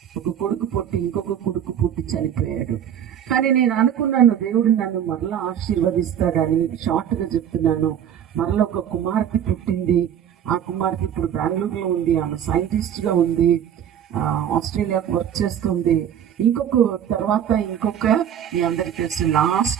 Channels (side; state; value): left; quieter; 9.5 dB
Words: ఒక కొడుకు పుట్టి ఇంకొక కొడుకు పుట్టి చనిపోయాడు. కానీ నేను అనుకున్నాను, దేవుడు నన్ను మరలా ఆశీర్వదిస్తాడని. షార్ట్గా చెప్తున్నాను, మరలా ఒక కుమార్తె పుట్టింది. ఆ కుమార్తె ఇప్పుడు బెంగళూరులో ఉంది. ఆమె సైంటిస్ట్గా ఉంది, ఆస్ట్రేలియాకు వర్క్ చేస్తుంది. ఇంకొక మీ అందరికీ తెలుసు,